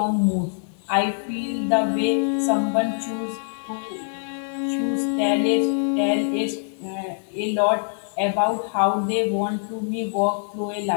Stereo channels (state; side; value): silent; right; digital silence